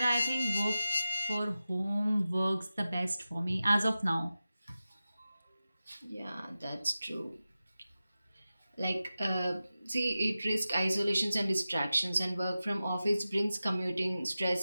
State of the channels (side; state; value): both; inverted; correlation -0.94